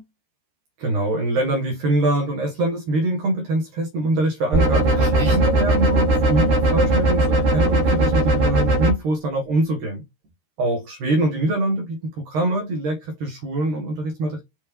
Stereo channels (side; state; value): left; late; 13 ms